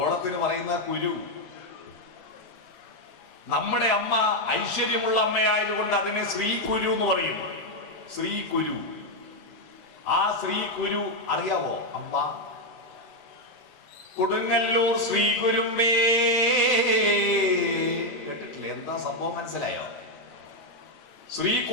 പറയുന്ന കുരു. നമ്മുടെ അമ്മ ഐശ്വര്യമുള്ള അമ്മയായതുകൊണ്ട് അതിനെ ശ്രീകുരു എന്ന് പറയും. ശ്രീകുരു. ആ ശ്രീകുരു അറിയാവോ? അമ്മ കൊടുങ്ങല്ലൂർ ശ്രീകുരുമേ കേട്ടിട്ടില്ലേ? എന്താ സംഭവം മനസ്സിലായോ?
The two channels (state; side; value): late; right; 38 ms